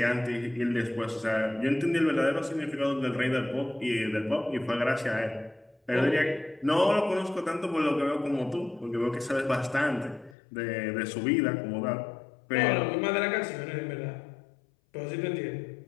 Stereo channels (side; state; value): right; drops out; at 10.4 s